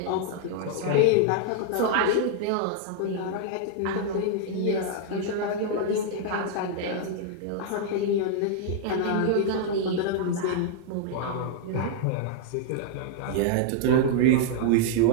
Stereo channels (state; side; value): different; both; correlation -0.01